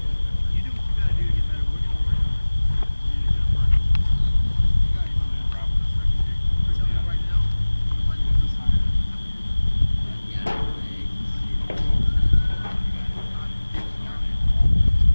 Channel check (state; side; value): inverted; both; correlation -1.00